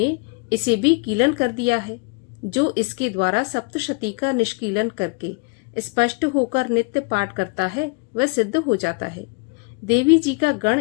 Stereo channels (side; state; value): right; quieter; 31.2 dB